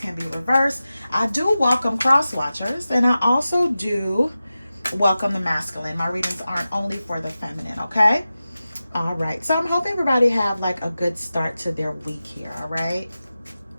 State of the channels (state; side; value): inverted; both; correlation -0.94